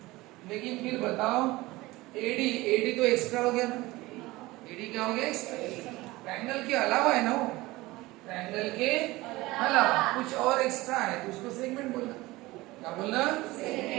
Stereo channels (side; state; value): left; quieter; 20.0 dB